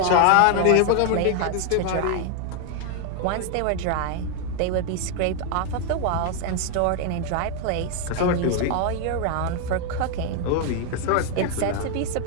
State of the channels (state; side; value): different; both; correlation 0.00